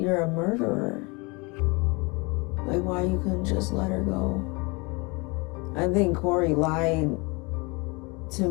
a murderer. Like, why you couldn't just let her go? I think Corey lied to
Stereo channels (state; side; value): quieter; right; 28.2 dB